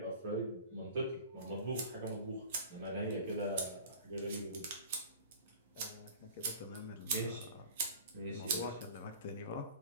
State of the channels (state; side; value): inverted; both; correlation -0.41